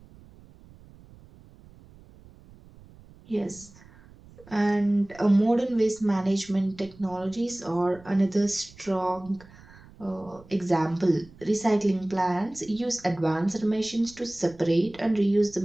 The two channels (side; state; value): right; noise; rumble, 23 dB below the sound